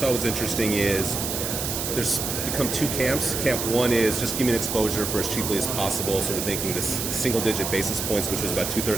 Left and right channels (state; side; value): noise; right; hiss, 3 dB below the sound